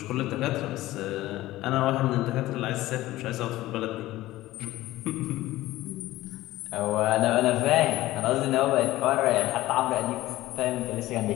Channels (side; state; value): right; quieter; 16.6 dB